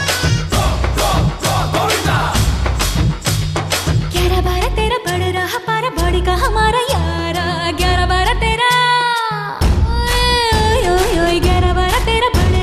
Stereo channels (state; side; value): identical; both; correlation 1.00